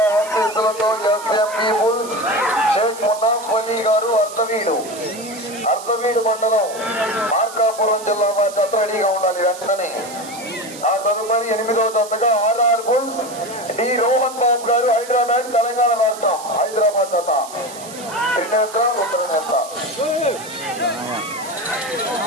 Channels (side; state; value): right; noise; hiss, 15 dB below the sound